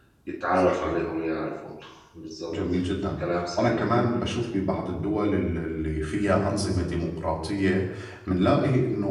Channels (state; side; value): identical; both; correlation 1.00